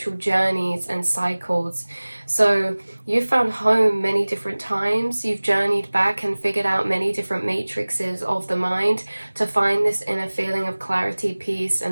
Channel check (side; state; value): both; inverted; correlation -1.00